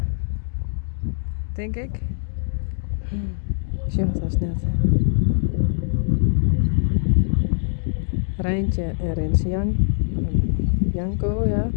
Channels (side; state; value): right; silent; digital silence